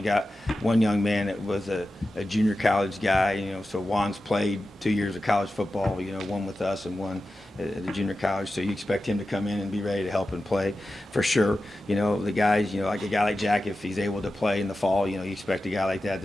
got one young man that was a junior college guy, so Juan's played 2 years of college football, one with us and one at the junior college, so you expect him to come in and be ready to help and play for sure. The guys, like a guy like Jack, if he's able to play in the fall, you expect a guy like that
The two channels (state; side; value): normal; both; correlation 0.93